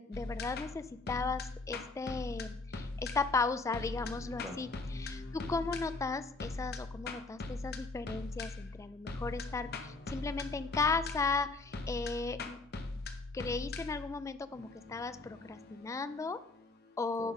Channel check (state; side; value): quieter; right; 3.5 dB